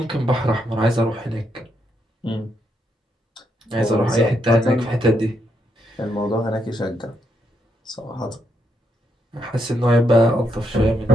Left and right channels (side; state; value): both; normal; correlation 0.78